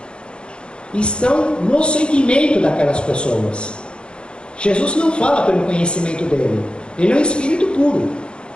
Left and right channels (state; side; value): late; right; 0.054 ms